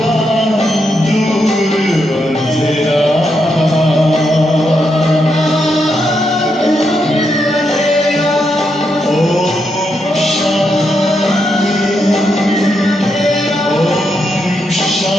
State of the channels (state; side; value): normal; both; correlation 0.81